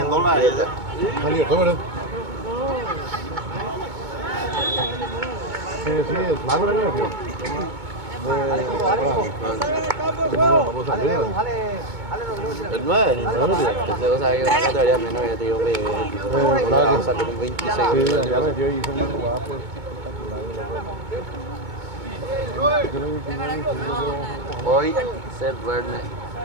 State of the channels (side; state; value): left; late; 2.2 ms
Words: Ali, tómale. Sí, es largo la niña, tío. El 9. Ese cosa que una categoría menos que te digo que salió con 26. Sí, ya metió y hizo una jugada pues Hoy se duerme.